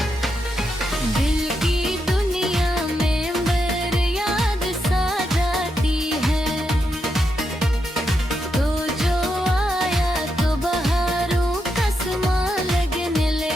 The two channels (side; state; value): both; normal; correlation 0.83